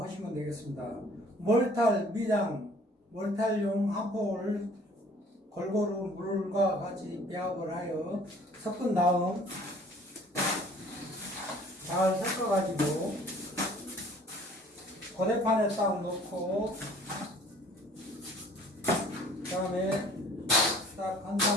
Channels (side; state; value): both; normal; correlation 0.53